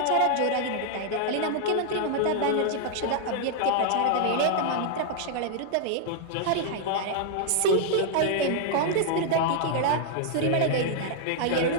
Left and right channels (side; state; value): both; different; correlation 0.00